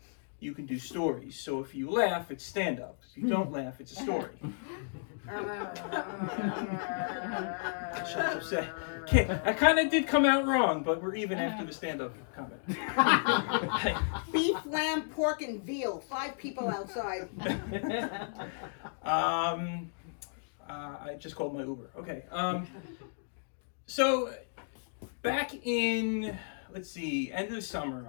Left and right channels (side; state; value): right; silent; digital silence